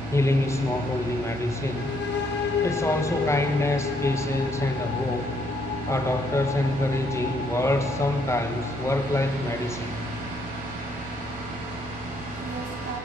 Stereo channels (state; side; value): normal; both; correlation 0.71